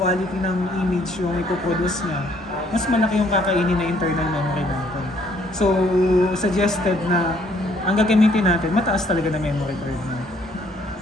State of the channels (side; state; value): both; normal; correlation 0.65